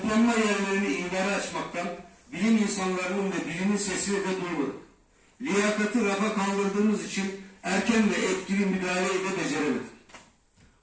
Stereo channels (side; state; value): both; identical; correlation 1.00